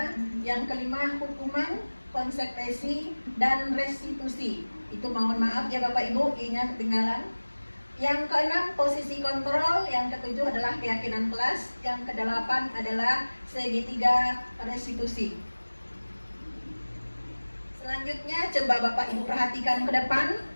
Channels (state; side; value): inverted; both; correlation -1.00